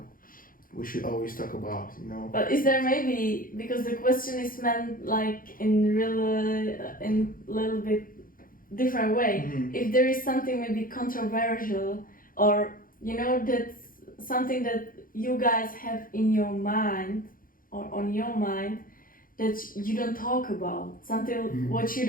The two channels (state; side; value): late; right; 0.41 ms